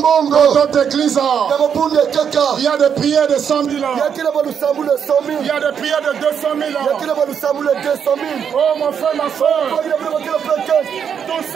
Dans notre église, il y a des prières de 100 000. Il y a des prières de 200 000. Oh mon frère, ma soeur. Tout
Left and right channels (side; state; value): left; quieter; 7.6 dB